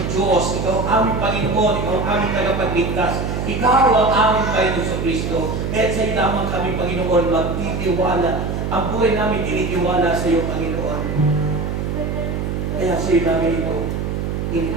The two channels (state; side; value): noise; right; hum, 2 dB below the sound